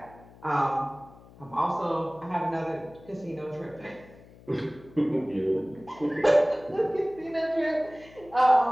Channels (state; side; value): noise; left; hum, 23 dB below the sound